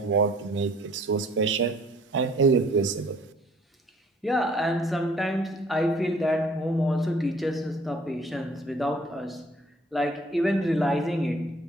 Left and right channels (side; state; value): both; normal; correlation 0.57